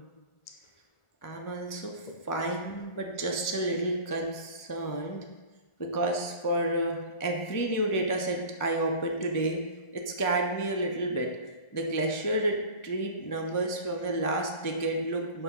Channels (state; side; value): late; right; 1.4 ms